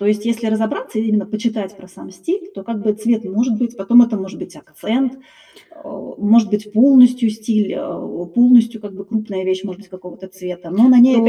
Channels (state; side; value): identical; both; correlation 1.00